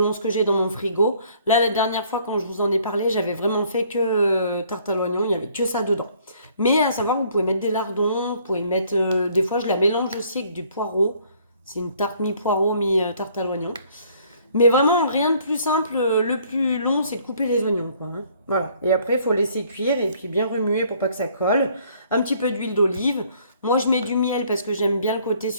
ce que j'ai dans mon frigo. Là, la dernière fois, quand je vous en ai parlé, j'avais vraiment fait que tarte à l'oignon, il n'y avait que ça dedans. Mais à savoir, vous pouvez mettre des lardons, vous pouvez mettre... des fois, je la mélange aussi avec du poireau. C'est une tarte mi-poireau, mi-tarte à l'oignon. Mais vraiment, rien de plus simple. Le plus long, c'est de couper les oignons, quoi, hein. Voilà. Et après, il faut laisser cuire et puis bien remuer pour pas que ça colle. Un petit peu d'huile d'olive. Moi, je mets du miel parce que j'aime bien le côté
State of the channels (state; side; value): inverted; both; correlation -0.61